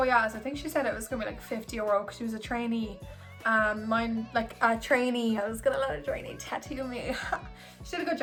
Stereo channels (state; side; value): identical; both; correlation 1.00